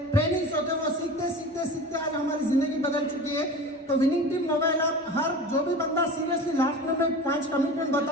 ट्रेनिंग्स होते हैं, वो सीखते आज हमारी जिंदगी बदल चुकी है। तो विनिंग टीम मोबाइल ऐप, हर जो भी बंदा सीरियसली, लास्ट में मैं 5 कमिटमेंट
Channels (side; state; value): both; normal; correlation 0.34